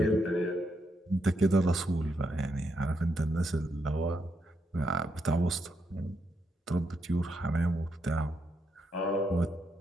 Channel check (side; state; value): both; normal; correlation 0.80